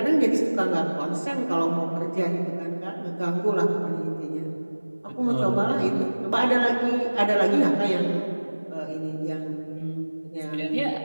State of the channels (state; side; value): inverted; both; correlation -1.00